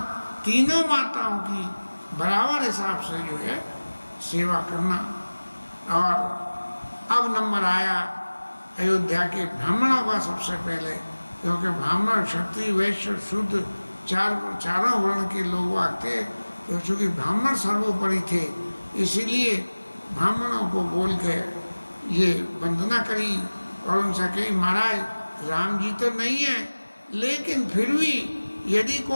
तीनों माताओं की बराबर हिसाब से जो है सेवा करना। और अब नंबर आया अयोध्या के ब्राह्मणों का सबसे पहले, क्योंकि ब्राह्मण क्षत्रिय वैश्य शूद्र चारों वर्ण के लोग आते, तो चूँकि ब्राह्मण सर्वोपरि थे इसीलिए ब्राह्मणों को बोल के ये वंदना करी और उनसे कही महाराज राम जी तो नहीं है, लेकिन फिर भी यदि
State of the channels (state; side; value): inverted; both; correlation -1.00